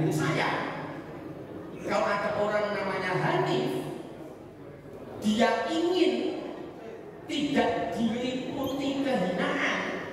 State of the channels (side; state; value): both; identical; correlation 1.00